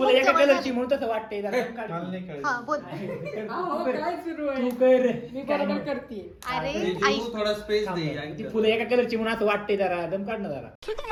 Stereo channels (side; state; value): both; identical; correlation 1.00